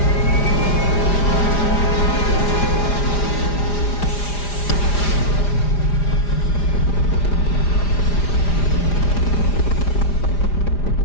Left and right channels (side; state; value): right; late; 4.9 ms